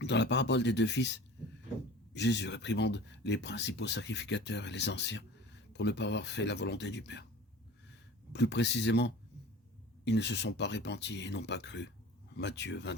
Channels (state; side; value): normal; both; correlation 0.40